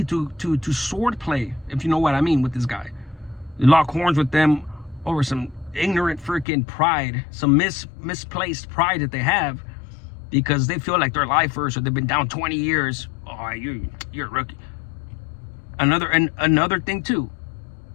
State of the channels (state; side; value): drops out; right; at 6.5 s